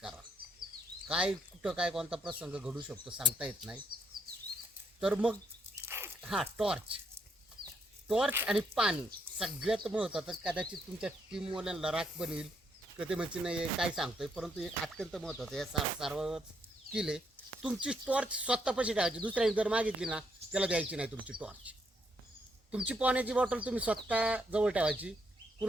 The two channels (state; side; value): normal; both; correlation 0.74